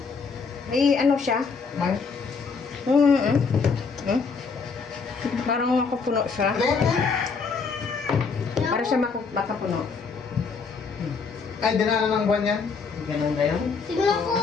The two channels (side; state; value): right; quieter; 5.1 dB